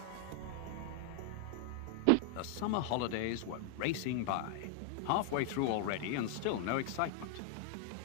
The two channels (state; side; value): different; both; correlation 0.00